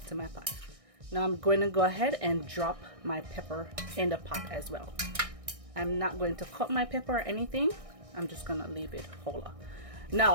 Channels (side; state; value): left; late; 1.6 ms